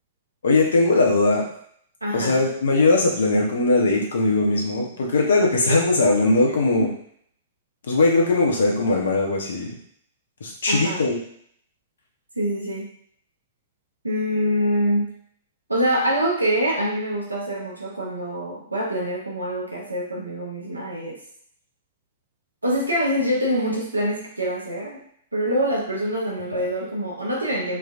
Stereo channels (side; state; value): both; inverted; correlation -0.63